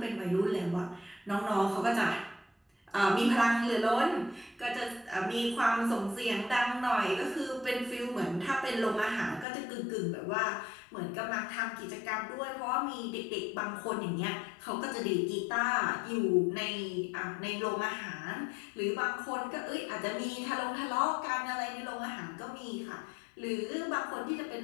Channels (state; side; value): drops out; right; at 9.5 s